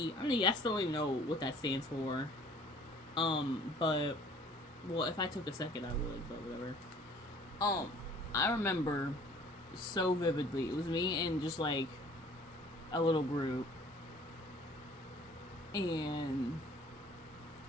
I mean, I still don't even know what that stands for. But, well, if I took a second, I would, but whatever. I remember so vividly. It was me and just, like, a little group, and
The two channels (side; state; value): both; normal; correlation 0.52